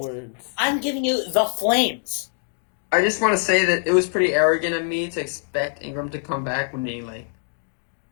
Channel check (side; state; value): right; silent; digital silence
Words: words. I'm giving you the flames. I just want to say that it was pretty arrogant of me to expect Ingram to come back when he